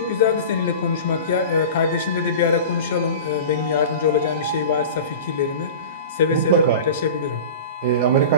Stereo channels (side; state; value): both; inverted; correlation -0.34